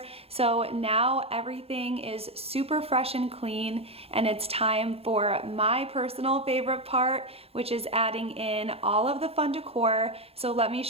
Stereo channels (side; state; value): left; late; 0.29 ms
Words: So now everything is super fresh and clean, and it's time for my personal favorite part, which is adding in all of the fun decor. So let me